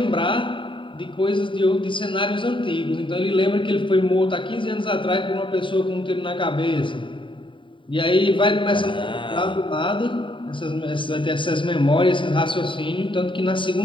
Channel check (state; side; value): late; right; 0.24 ms